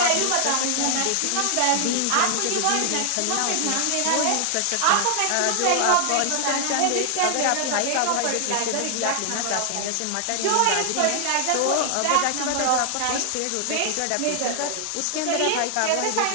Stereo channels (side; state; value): both; different; correlation 0.00